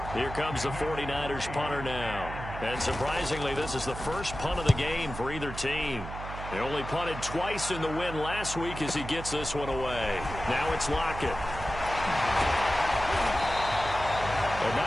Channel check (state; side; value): noise; right; hum, 9 dB below the sound